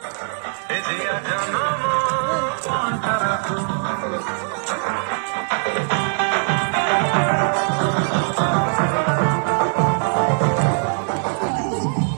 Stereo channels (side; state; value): left; silent; 64 dB below the other